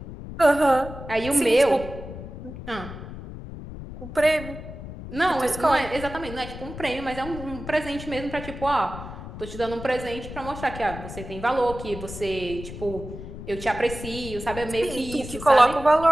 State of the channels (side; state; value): left; noise; rumble, 11 dB below the sound